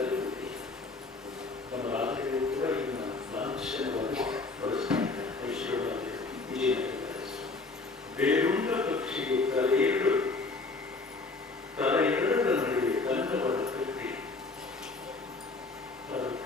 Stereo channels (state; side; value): quieter; right; 3.7 dB